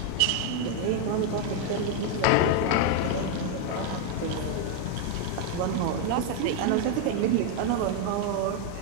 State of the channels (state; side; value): different; both; correlation 0.00